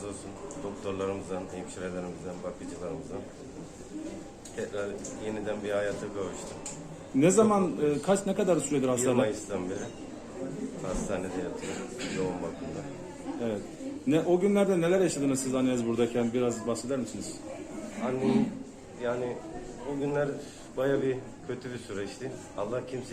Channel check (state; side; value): identical; both; correlation 1.00